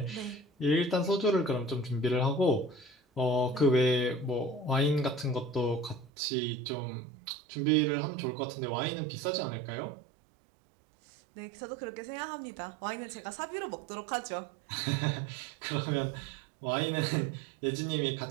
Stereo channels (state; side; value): drops out; left; at 6.1 s